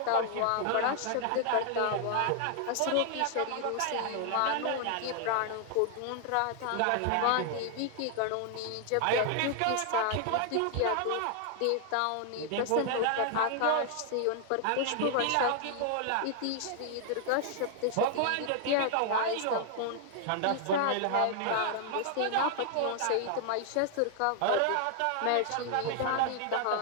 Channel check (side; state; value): both; different; correlation 0.00